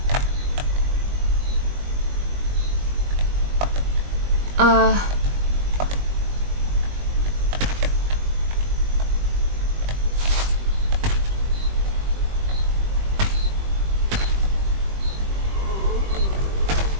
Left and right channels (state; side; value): late; left; 21 ms